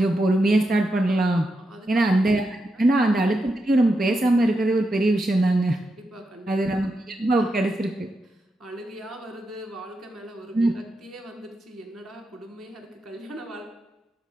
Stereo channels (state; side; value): normal; both; correlation 0.86